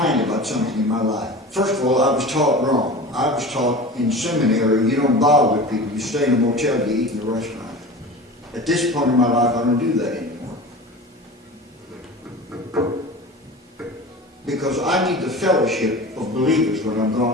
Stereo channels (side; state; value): both; normal; correlation 0.34